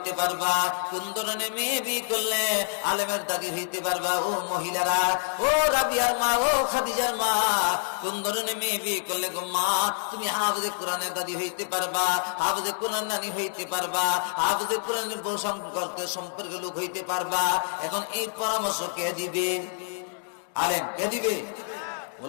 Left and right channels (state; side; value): silent; right; digital silence